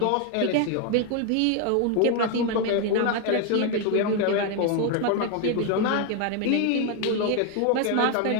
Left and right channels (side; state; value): both; different; correlation 0.01